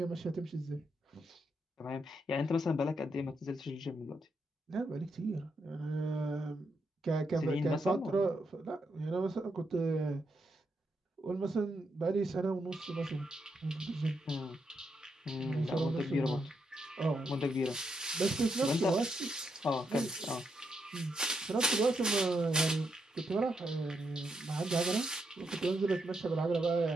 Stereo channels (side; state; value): both; normal; correlation 0.80